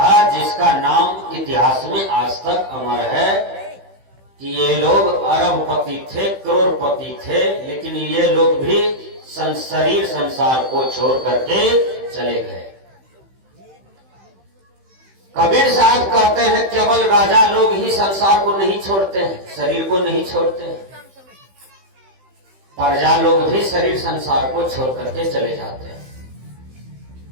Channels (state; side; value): late; left; 15 ms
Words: जिसका नाम इतिहास में आज तक अमर है कि ये लोग अरबपति थे, करोड़पति थे, लेकिन ये लोग भी शरीर संसार को छोड़ करके चले गए। कबीर साहब कहते हैं केवल राजा लोग ही संसार को नहीं छोड़ते हैं, शरीर को नहीं छोड़ते हैं। प्रजा लोग भी शरीर संसार को छोड़ करके चले जाते हैं।